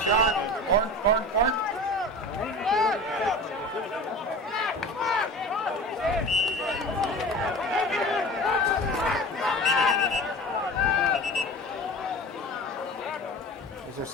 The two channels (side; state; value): both; normal; correlation 0.35